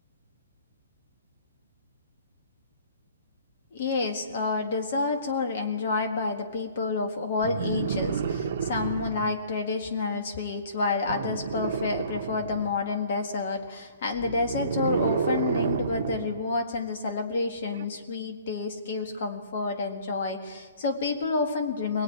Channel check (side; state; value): both; inverted; correlation -0.52